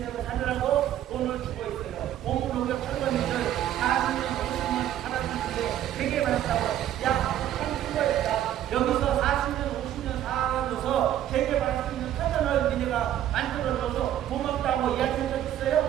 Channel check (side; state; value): left; quieter; 11.7 dB